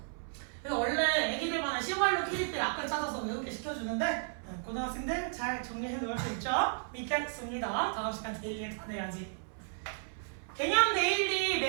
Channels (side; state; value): left; silent; 55 dB below the other